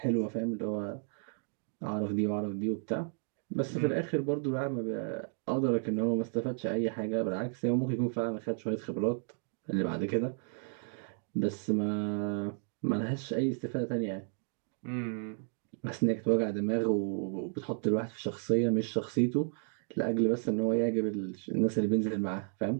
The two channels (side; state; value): left; silent; 56 dB below the other